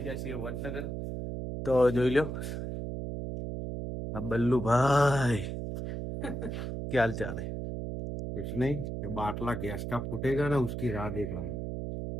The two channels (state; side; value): noise; right; hum, 4 dB below the sound